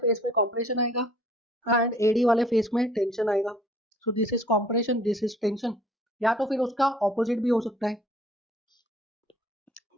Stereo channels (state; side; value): normal; both; correlation 0.55